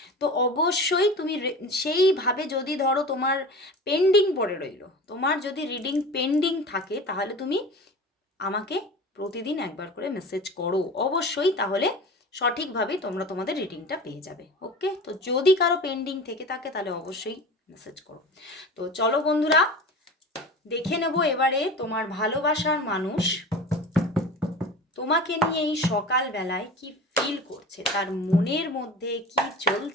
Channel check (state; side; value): normal; both; correlation 0.35